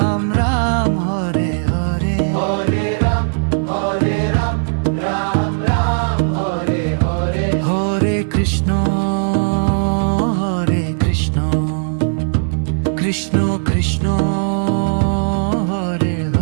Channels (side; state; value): left; silent; digital silence